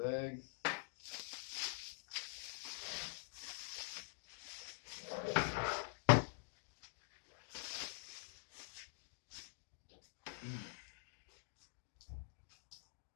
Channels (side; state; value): right; silent; digital silence